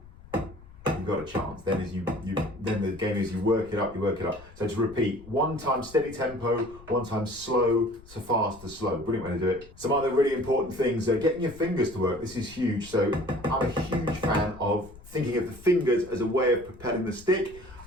you've got a chance. Then then the game is you work it up. So to repeat, 1 time steady tempo, 1 time slow to fast to slow. Brilliant way to do it. Some other really important things are getting your fingers to work. This is huge. So I'm a huge fan of thinking of the fingers as a way of propelling the stick.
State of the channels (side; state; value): left; noise; rumble, 20 dB below the sound